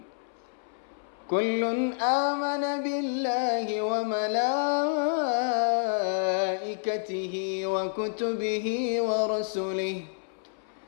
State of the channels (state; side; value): silent; right; 59 dB below the other